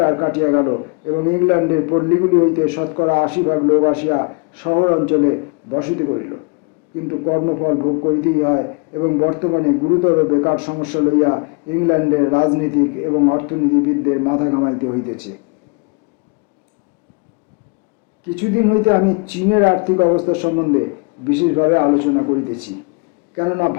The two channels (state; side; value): quieter; right; 32.4 dB